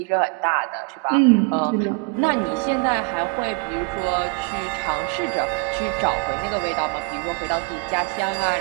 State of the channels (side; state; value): left; quieter; 31.2 dB